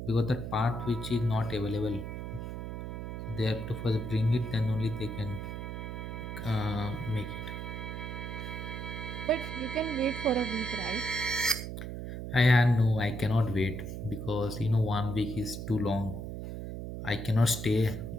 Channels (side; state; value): right; noise; hum, 6 dB below the sound